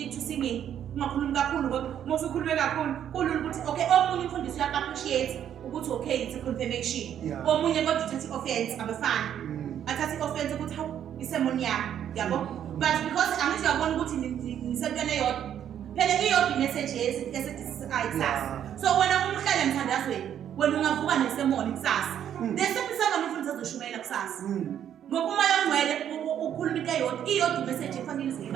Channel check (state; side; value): quieter; left; 9.8 dB